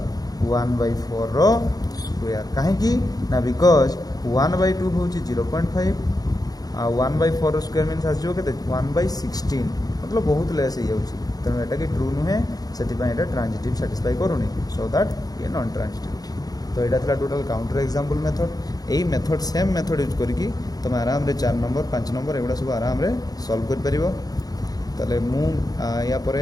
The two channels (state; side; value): late; right; 0.18 ms